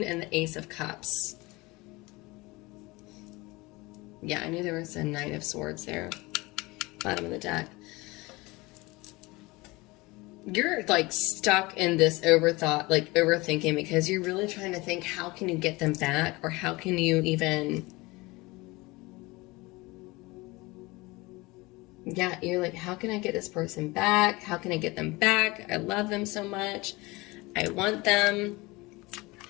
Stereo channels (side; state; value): right; quieter; 22.8 dB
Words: and the Ace of Cups. Yeah, I knew there was a Knight of Swords there. Bottom of the deck. You're like stuck in this overthinking, because you're really trying to think, how can you get them back? Or how can you even... Yeah, you're like, how can I get this person back? How can I get them back? I love them so much. I want them.